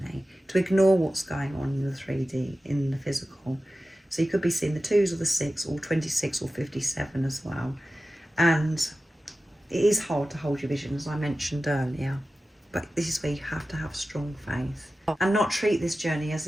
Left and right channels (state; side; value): normal; both; correlation 0.94